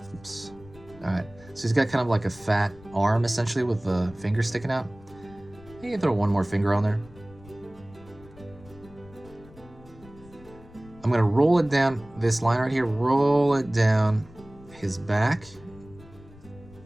Oops. All right, so he's got kind of like a fat arm essentially with the finger sticking out. You can throw one more finger on there. I'm gonna roll it down this line right here, roll it down his back.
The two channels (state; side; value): noise; left; rumble, 22 dB below the sound